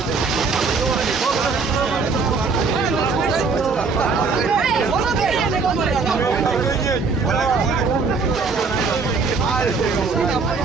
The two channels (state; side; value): quieter; left; 4.6 dB